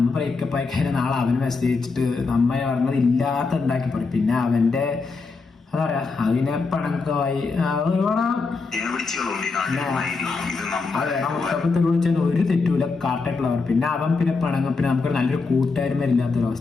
ബ്രേക്കപ്പ് ആയി കഴിഞ്ഞാൽ നാളെ അവന് മെസ്സേജ് അയച്ചിട്ട് നമ്മ പറഞ്ഞത് ഇല്ലാത്ത ഉണ്ടാക്കി പറയും. പിന്നെ അവന്റെ എന്താ പറയാ, അതിനെ പണക്കമായി മുത്തപ്പത്തിൽ വിളിച്ചാൽ ഒരു തെറ്റൂല, കാട്ടായിട്ടുള്ളവർ. പിന്നെ അവൻ പിന്നെ പണങ്ങും. പിന്നെ നമുക്ക് നല്ലൊരു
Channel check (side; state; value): right; quieter; 4.3 dB